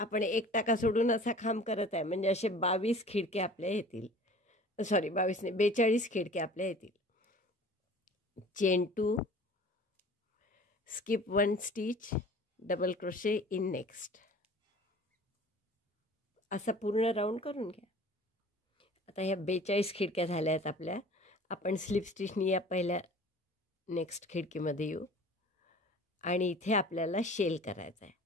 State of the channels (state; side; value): normal; both; correlation 0.45